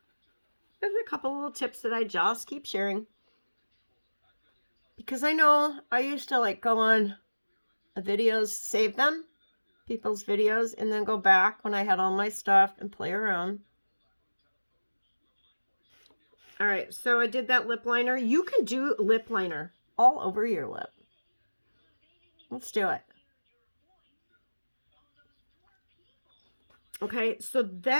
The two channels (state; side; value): inverted; both; correlation -1.00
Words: There's a couple little tips that I just keep sharing. Because I know I used to like go on videos, save them, people's videos, and then go back when I had all my stuff and play around. All right, so I did that lip liner. You can do lip liner all over your lip. Let's do it. Okay, so